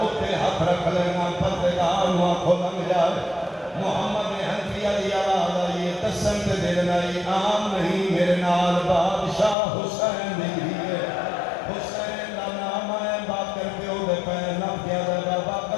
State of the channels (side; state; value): right; drops out; at 9.6 s